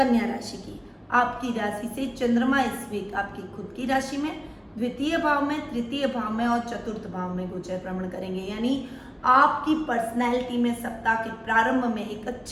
राशि की। आपकी राशि से चंद्रमा इस वीक आपकी खुद की राशि में द्वितीय भाव में, तृतीय भाव में और चतुर्थ भाव में गोचर भ्रमण करेंगे। यानी आपकी पर्सनैलिटी में सप्ताह के प्रारंभ में एक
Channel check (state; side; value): identical; both; correlation 1.00